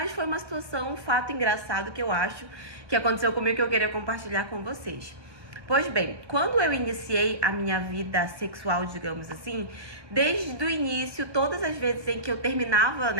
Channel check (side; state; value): left; late; 1.1 ms